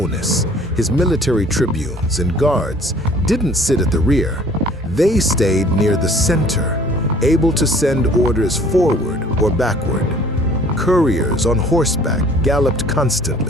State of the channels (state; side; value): normal; both; correlation 0.53